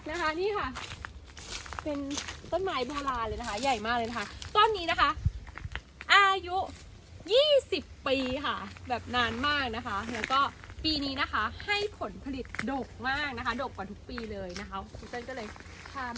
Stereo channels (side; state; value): both; identical; correlation 1.00